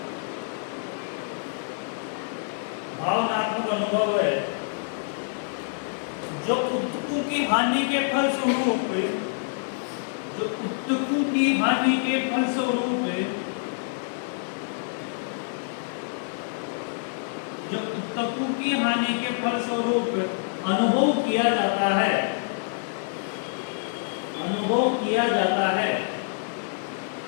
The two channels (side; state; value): right; silent; digital silence